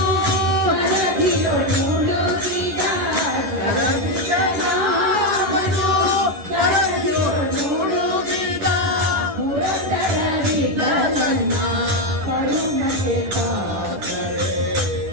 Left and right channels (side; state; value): left; late; 10 ms